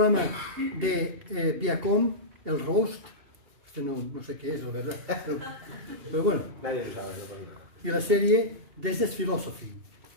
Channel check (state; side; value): late; left; 2.8 ms